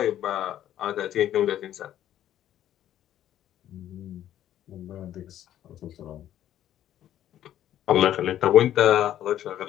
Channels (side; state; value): right; quieter; 11.7 dB